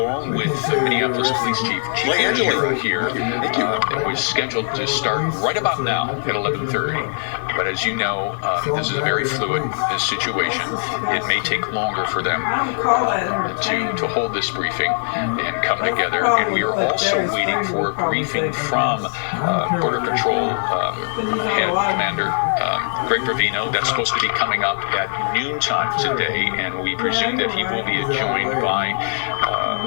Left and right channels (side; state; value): right; silent; digital silence